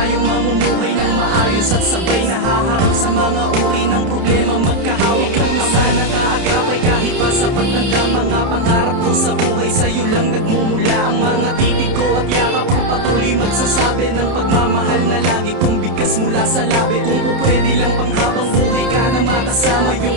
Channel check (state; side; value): late; left; 30 ms